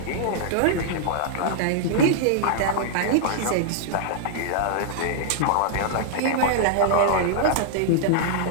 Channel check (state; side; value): different; both; correlation -0.01